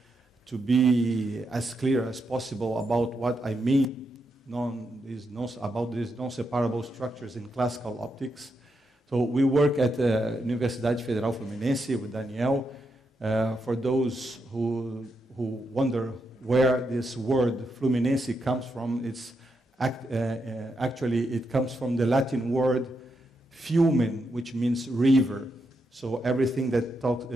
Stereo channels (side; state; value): both; normal; correlation 0.83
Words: be as clear as possible about what I mean about these non-separable structures in classical optics. So we work at Universidade Federal Fluminense with Daniel. For those who wonder where this word Fluminense comes from, actually it comes from the Latin word Flumen, which means river. So everything